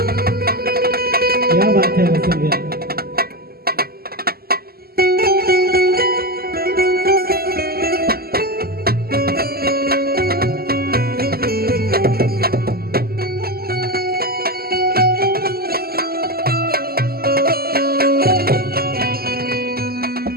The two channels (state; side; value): late; left; 0.45 ms